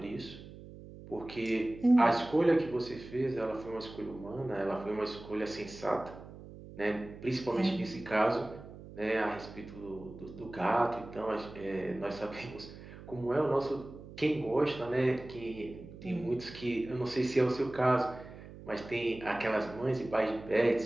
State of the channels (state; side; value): noise; right; hum, 15 dB below the sound